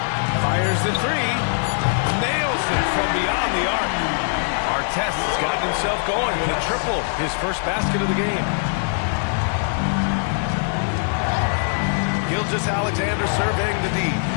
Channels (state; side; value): silent; right; 64 dB below the other